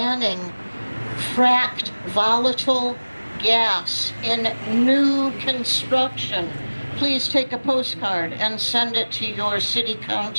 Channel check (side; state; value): both; inverted; correlation -1.00